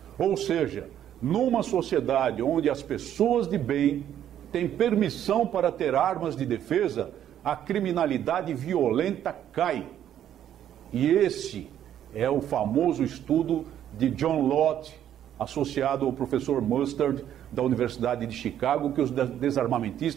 Ou seja, numa sociedade onde as pessoas de bem têm permissão para ter armas de defesa, a criminalidade violenta cai. E esse é o famoso estudo de John Lott, associado ao professor Mustard, da Universidade de Chicago, que os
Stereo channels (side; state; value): left; quieter; 10.6 dB